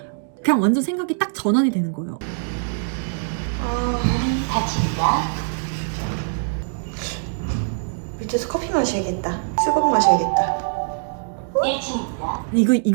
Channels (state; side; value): silent; left; digital silence